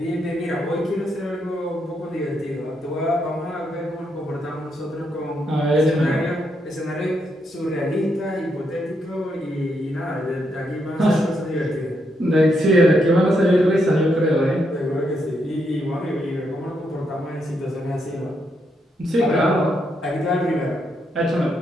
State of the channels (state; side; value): normal; both; correlation 0.79